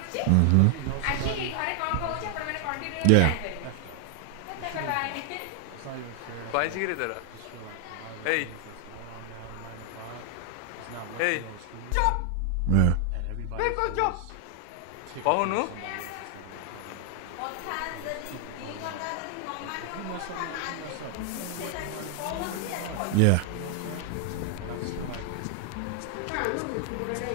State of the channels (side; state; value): both; different; correlation 0.00